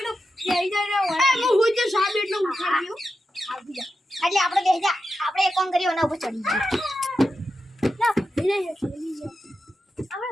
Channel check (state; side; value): normal; both; correlation 0.89